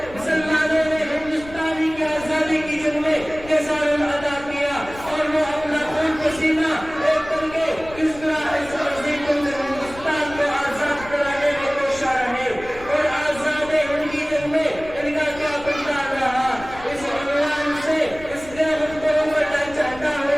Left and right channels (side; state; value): left; noise; rumble, 17 dB below the sound